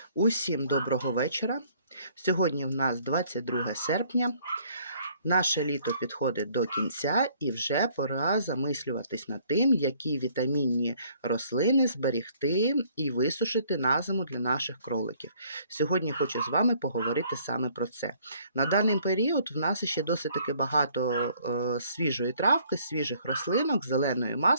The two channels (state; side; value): inverted; both; correlation -0.61